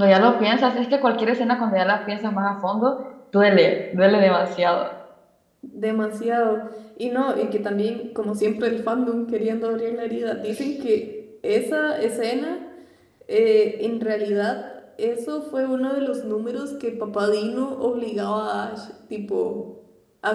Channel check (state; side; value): identical; both; correlation 1.00